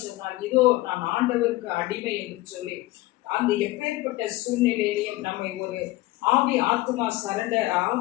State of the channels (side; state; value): right; quieter; 18.8 dB